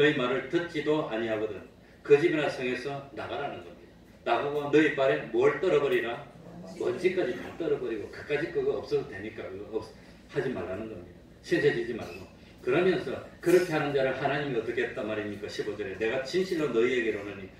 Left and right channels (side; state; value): both; identical; correlation 1.00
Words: 말을 듣지도 아니하거든 그 집이나 성에서 나가라는 겁니다. 나가고 너희 발에 뭘 떨어버리라? 먼지까지 다 떨어버리고 그까짓 그거 없어도 되니까 그거 하지 말라는 겁니다. 신세지지 말고. 그러면서 그렇게 하는 자를 하나님이 어떻게 했단 말입니까? 15절에 내가 진실로 너희에게로는